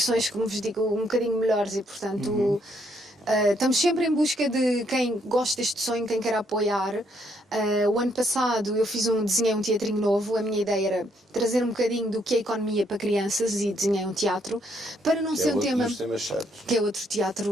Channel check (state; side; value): normal; both; correlation 0.72